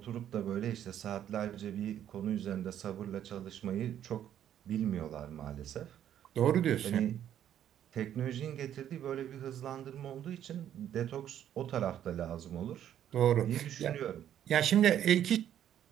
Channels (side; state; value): left; quieter; 10.6 dB